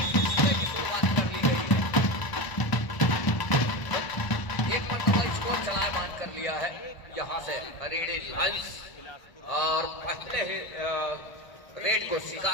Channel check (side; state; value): right; late; 1.0 ms